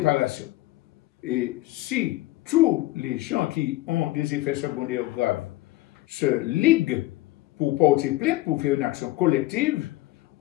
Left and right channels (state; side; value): quieter; right; 17.8 dB